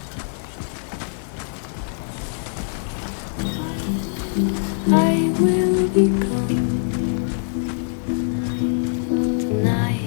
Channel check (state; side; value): silent; right; digital silence